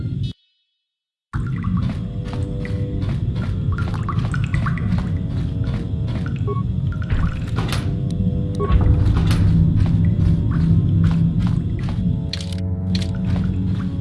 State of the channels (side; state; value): both; identical; correlation 1.00